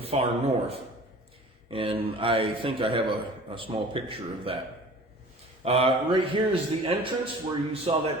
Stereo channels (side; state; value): both; normal; correlation 0.44